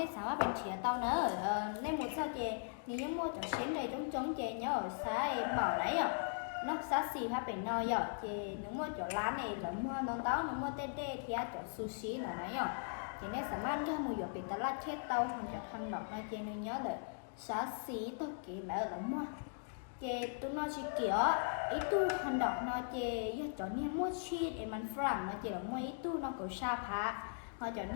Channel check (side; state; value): right; silent; digital silence